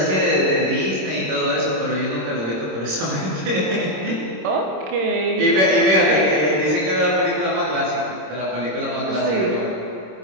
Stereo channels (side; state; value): left; late; 26 ms